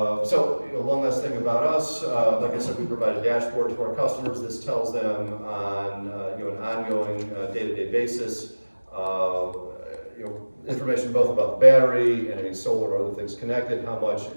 last thing about us. Like I said, we provide a dashboard to our customers. This tells them on an ongoing day-to-day basis information both about the battery and any solar or other things connected, how much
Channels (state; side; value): inverted; both; correlation -1.00